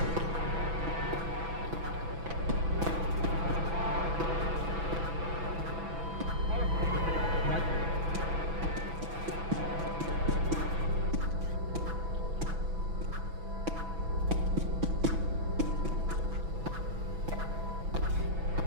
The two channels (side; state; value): left; late; 6.0 ms